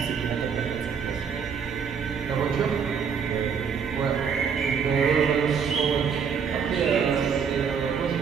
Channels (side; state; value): left; quieter; 6.6 dB